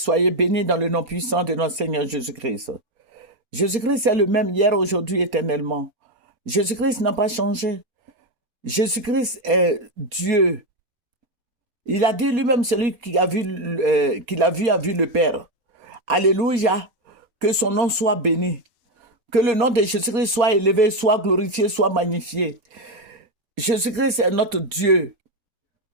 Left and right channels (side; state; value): left; late; 4.3 ms